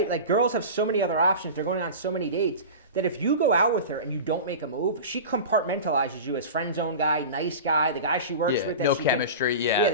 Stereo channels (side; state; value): both; inverted; correlation -0.31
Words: Like girls have so many other options. They're going on so many dates that if you go out with her and you don't make a move, she compartmentalizes you as friend zone guy, nice guy, the guy she works with. No chemistry.